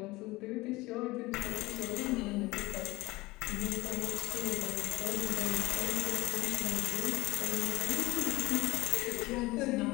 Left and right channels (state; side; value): quieter; right; 20.7 dB